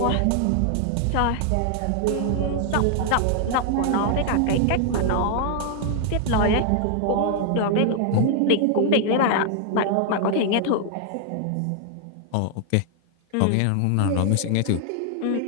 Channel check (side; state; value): both; different; correlation 0.00